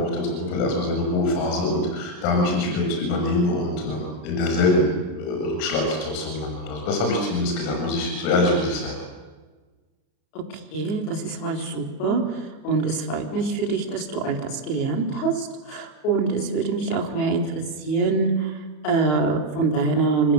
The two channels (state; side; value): late; right; 33 ms